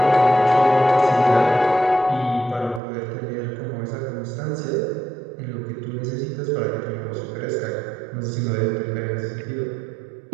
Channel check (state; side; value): drops out; left; at 2.8 s